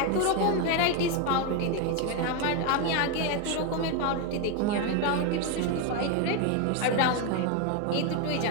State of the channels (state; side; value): different; both; correlation 0.02